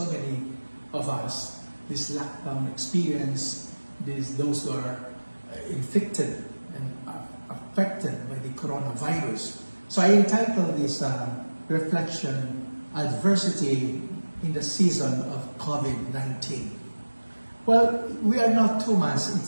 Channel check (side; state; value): both; inverted; correlation -1.00